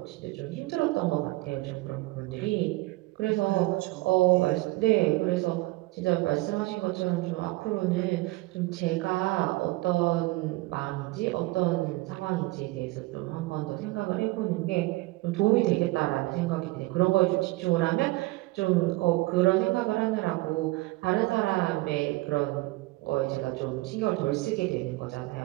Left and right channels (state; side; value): quieter; left; 21.1 dB